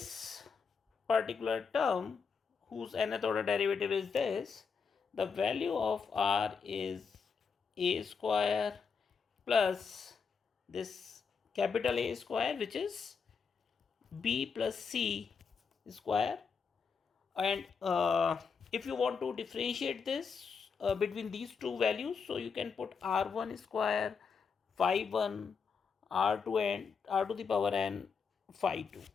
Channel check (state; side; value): quieter; right; 5.7 dB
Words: particular term whose nth order derivative is this, the value of r is a square plus this capital A square, which is b plus c square. And if you want to differentiate this between these two values, so you can put r1 square phi 1 r2 and r to the power n phi 2.